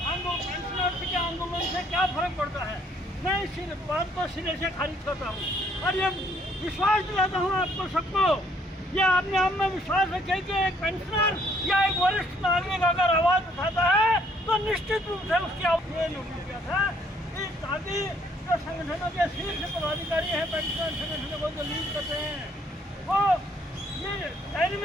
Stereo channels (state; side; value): normal; both; correlation 0.65